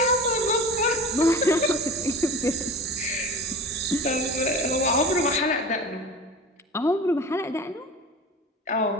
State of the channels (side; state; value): both; normal; correlation 0.34